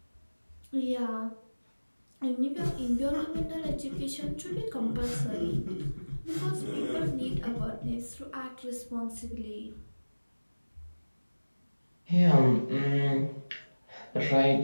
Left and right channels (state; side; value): inverted; both; correlation -1.00